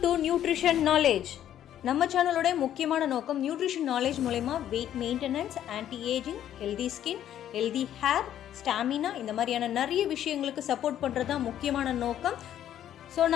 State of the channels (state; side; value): quieter; right; 11.0 dB